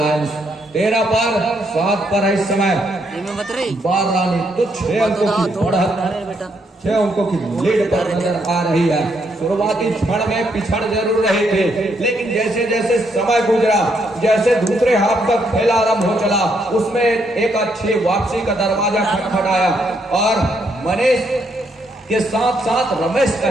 13 पर 7 पर है इस समय बारानी, तो 6 अंकों की बढ़त, 6 अंकों की लीड पर नजर आ रही है। शुरुआती क्षण में पिछड़ जरूर रही थी, लेकिन जैसे जैसे समय गुजरा, जैसे दूसरे हाफ का खेल आरंभ हो चला, उसमें एक अच्छी वापसी का दरवाजा खटखटाया और मनीष के साथ साथ रमेश का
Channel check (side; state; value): both; normal; correlation 0.75